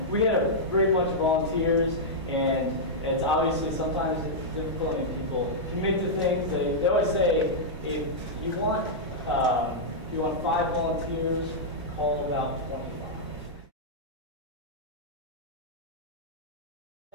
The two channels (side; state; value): both; normal; correlation -0.08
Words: we had a great bunch of volunteers, and it's obviously sometimes it's difficult when people commit to things. They always say if you want 5 volunteers, call about 25.